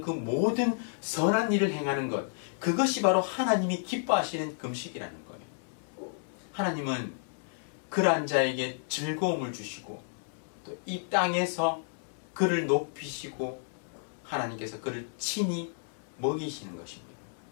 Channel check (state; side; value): silent; right; digital silence